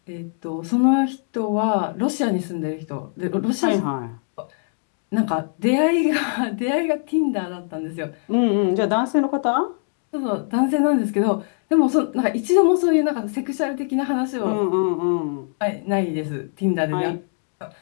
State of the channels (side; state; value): right; silent; 59 dB below the other